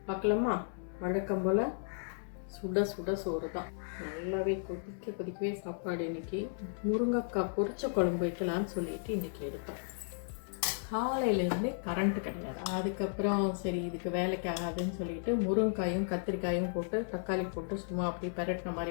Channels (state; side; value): silent; right; digital silence